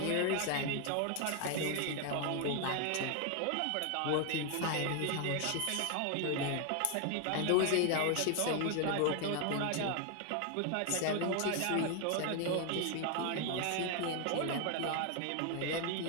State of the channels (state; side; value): different; both; correlation 0.00